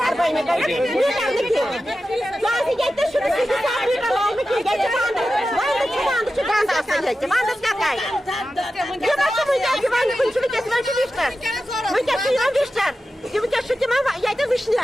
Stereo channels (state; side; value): normal; both; correlation 0.92